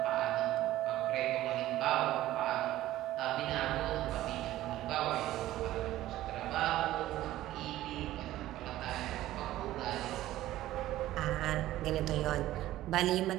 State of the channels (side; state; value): left; quieter; 14.8 dB